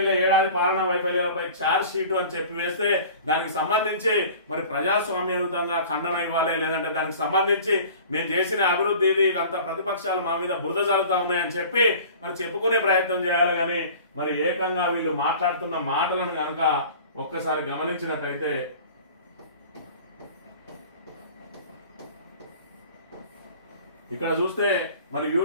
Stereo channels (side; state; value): both; inverted; correlation -0.43